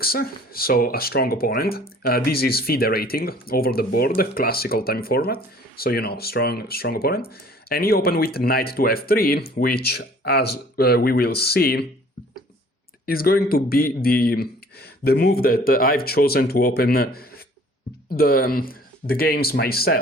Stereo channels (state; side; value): normal; both; correlation 0.53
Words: so a strong opponent. This is FIDE rating over the board, classical time format. So, strong opponent. And he opened with knight to f3, which, as we will see, is going to be the move that I've chosen to open the games